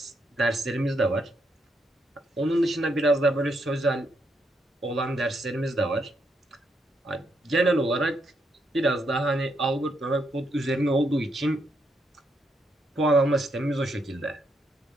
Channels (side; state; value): both; normal; correlation 0.78